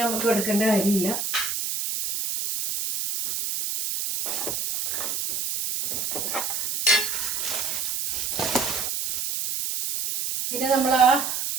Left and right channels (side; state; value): right; noise; hiss, 2 dB below the sound